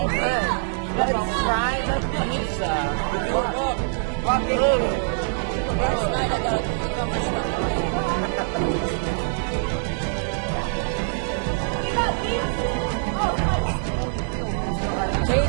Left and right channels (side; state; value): left; silent; digital silence